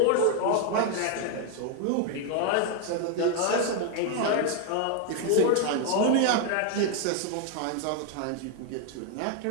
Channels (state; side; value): different; both; correlation 0.01